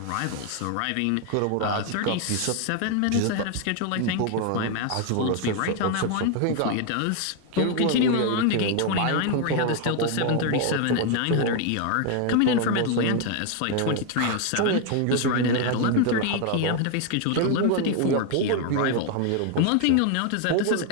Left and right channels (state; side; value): different; both; correlation 0.01